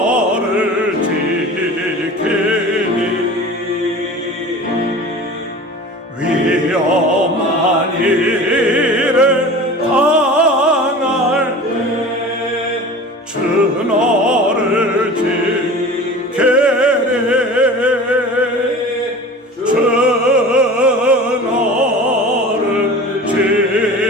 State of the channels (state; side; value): normal; both; correlation 0.38